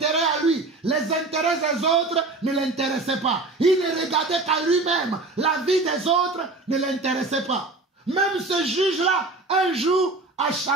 à lui. Les intérêts des autres ne l'intéressaient pas. Il ne regardait qu'à lui-même. La vie des autres ne l'intéressait pas. Même ce juge-là, un jour, a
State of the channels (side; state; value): left; quieter; 3.3 dB